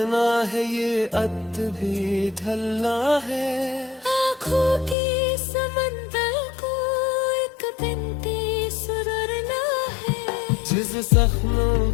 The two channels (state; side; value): drops out; right; at 5.0 s